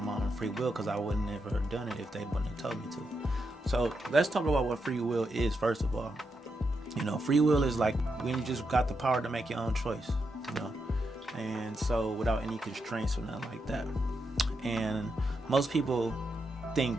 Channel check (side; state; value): both; normal; correlation 0.84